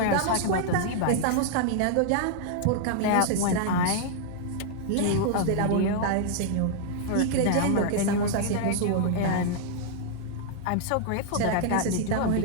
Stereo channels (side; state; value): both; different; correlation -0.01